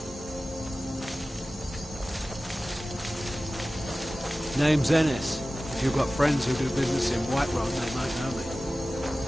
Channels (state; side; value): normal; both; correlation 0.96